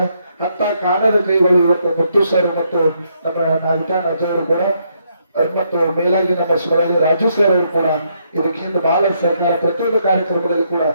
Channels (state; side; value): inverted; both; correlation -0.75